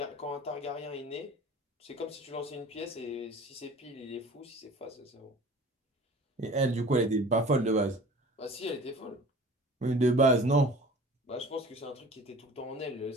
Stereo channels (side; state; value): both; normal; correlation 0.43